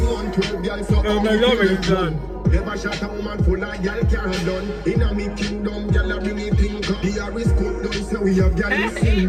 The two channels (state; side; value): identical; both; correlation 1.00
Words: on 12, girl, so Oh my God, it's done. Never shot a woman full of girl can't done. In a me kingdom, girl a bring it thing come. The Harris cook down, so we have girl in